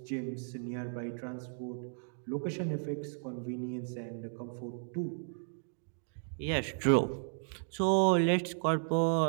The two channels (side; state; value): left; silent; digital silence